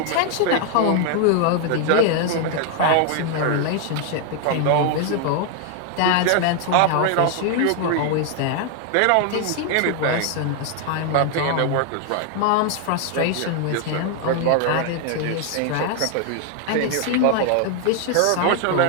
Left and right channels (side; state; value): both; different; correlation 0.00